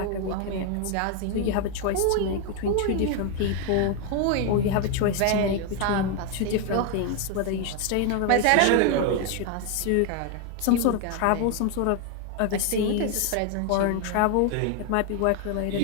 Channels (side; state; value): both; different; correlation 0.01